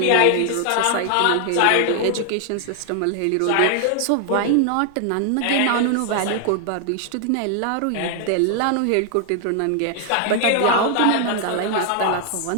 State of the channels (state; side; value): different; both; correlation 0.00